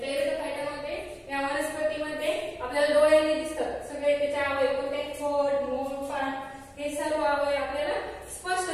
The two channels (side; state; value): both; identical; correlation 1.00